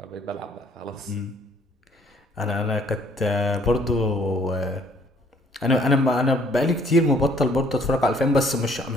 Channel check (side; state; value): both; normal; correlation 0.61